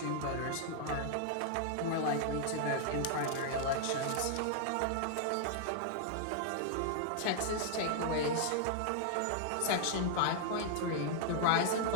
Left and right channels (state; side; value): different; both; correlation -0.01